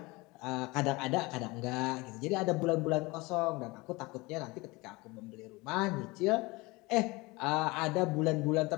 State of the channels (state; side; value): quieter; right; 23.6 dB